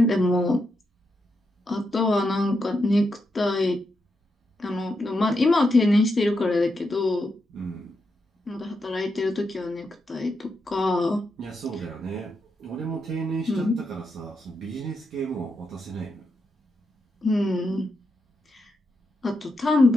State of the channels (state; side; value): normal; both; correlation 0.84